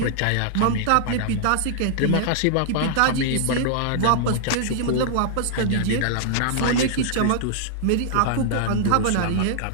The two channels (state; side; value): different; both; correlation -0.01